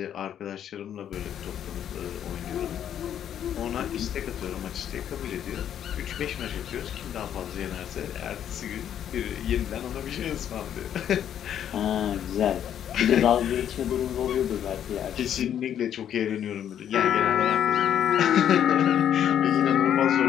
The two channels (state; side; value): quieter; right; 9.8 dB